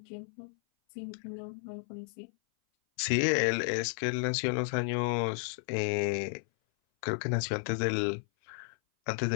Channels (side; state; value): right; silent; 56 dB below the other